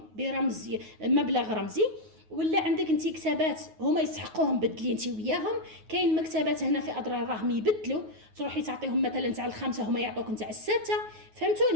برمز مبلغ رمزي، ولا عندك انت كتابات هما يسحقوهم بدلي انت وياهم. كاين مكتبات هنا في اضرار راهم يبدلوا، تروحي تعطيهم مثلا تاع ال5 هما يعطوك نتاع ال6،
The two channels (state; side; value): late; left; 9.4 ms